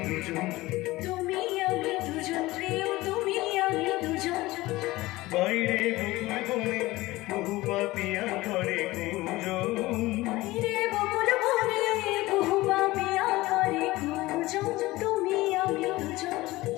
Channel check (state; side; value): quieter; right; 19.1 dB